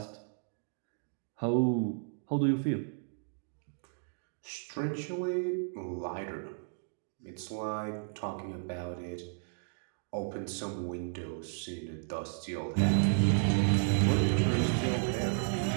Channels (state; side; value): silent; left; digital silence